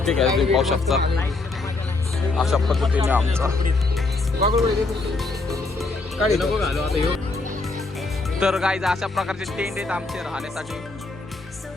घ्यायला तुम्ही पाहू शकता. अशा पद्धतीने आमचा तर गाईज अशा प्रकारचे टेंट आहेत आमचे राहण्यासाठी.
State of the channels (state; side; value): quieter; right; 3.4 dB